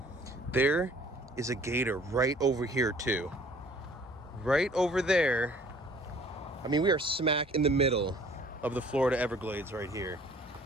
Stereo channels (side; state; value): both; normal; correlation 0.54